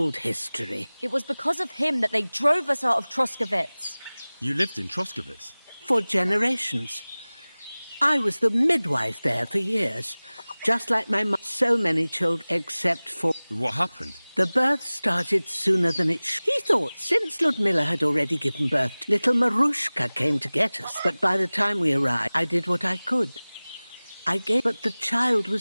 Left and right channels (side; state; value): both; inverted; correlation -0.99